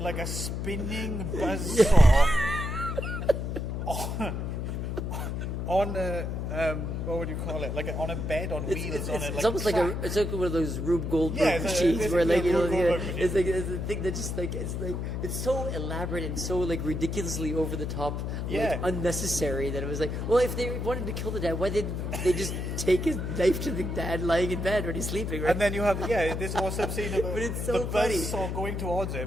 a spinning buzzsaw on a what would you call it? On a bed on wheels. It's almost like one of those Rube Goldberg machines where it's like it's a thing that just it's so elaborate and so ridiculously over the top, unnecessary that it was like, well, if they wanted to kill the dad, why didn't they just take his knife to the dad lying in bed when he's sleeping? Right? And then you have this awesome scene of but it's so the funny. buzzsaw going towards him,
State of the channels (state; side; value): noise; left; hum, 3 dB below the sound